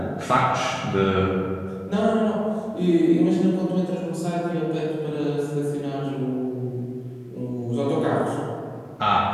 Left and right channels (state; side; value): identical; both; correlation 1.00